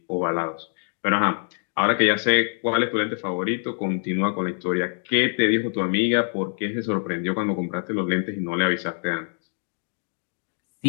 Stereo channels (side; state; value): right; silent; 62 dB below the other